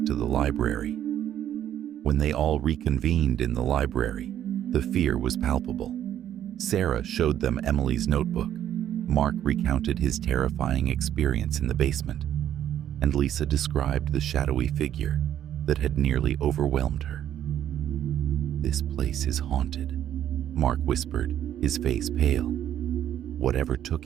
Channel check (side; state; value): left; quieter; 10.9 dB